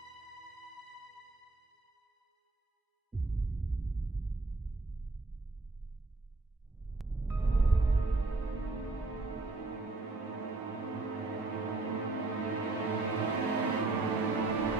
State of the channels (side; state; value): left; quieter; 3.3 dB